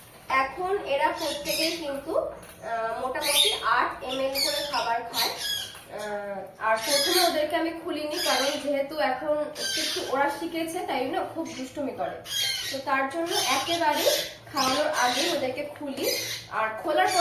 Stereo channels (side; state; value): both; identical; correlation 1.00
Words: এখন এরা প্রত্যেকেই কিন্তু মোটামুটি 8 ml করে খাবার খায়। আর প্রথমে ওদেরকে আমি খুলিনি, কারণ যেহেতু এখন একটু ওরা শিখেছে, তাই না খুব দুষ্টুমি করে। তো তার জন্য একেবারে খাওয়ানোর আগে ওদেরকে খুলি, আর খোলার